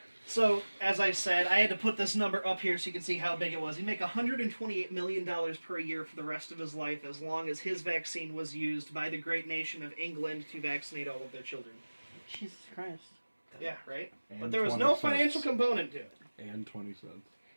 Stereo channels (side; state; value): both; inverted; correlation -1.00